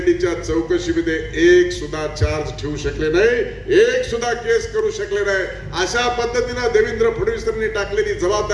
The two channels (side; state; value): both; identical; correlation 1.00